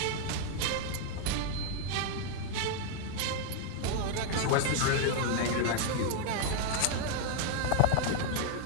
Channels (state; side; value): different; both; correlation 0.00